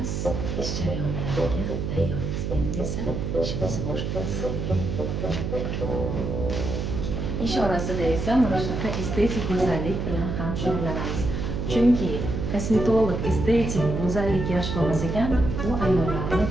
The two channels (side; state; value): right; noise; hum, 2 dB below the sound